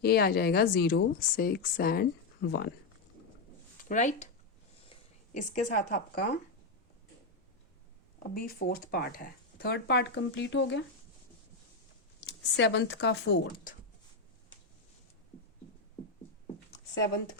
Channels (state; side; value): quieter; right; 3.6 dB